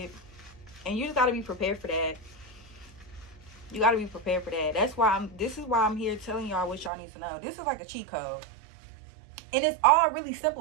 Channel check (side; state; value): left; drops out; at 6.9 s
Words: And you just gotta be prepared for that. You gotta be prepared for that. That's why this is why I'm here telling y'all what y'all need to know. This is like a cheat code. And it's all really